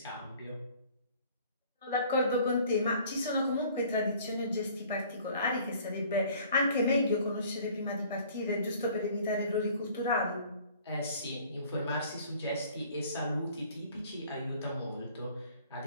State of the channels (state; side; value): inverted; both; correlation -0.53